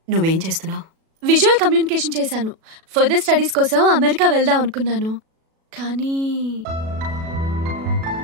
నువ్వేం చేస్తున్నావు? విజువల్ కమ్యూనికేషన్ చేశాను. ఫర్దర్ స్టడీస్ కోసం అమెరికా వెళ్దాం అనుకున్నాను, కానీ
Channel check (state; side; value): late; left; 37 ms